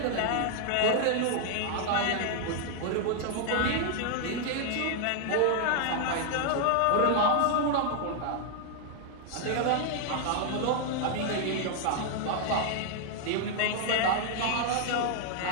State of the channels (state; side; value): different; both; correlation 0.00